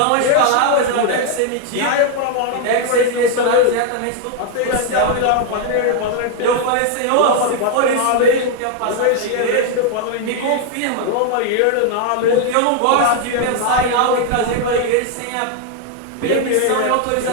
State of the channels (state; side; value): different; both; correlation 0.00